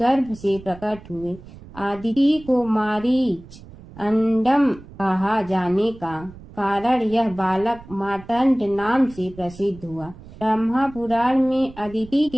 से प्रकट हुए। आदिति को मारीच अंडम कहा जाने का कारण यह बालक मार्तंड नाम से प्रसिद्ध हुआ। ब्रह्मा पुराण में अदिति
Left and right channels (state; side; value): noise; right; rumble, 19 dB below the sound